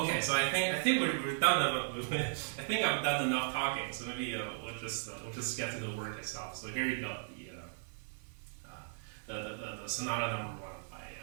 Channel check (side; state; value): left; silent; 54 dB below the other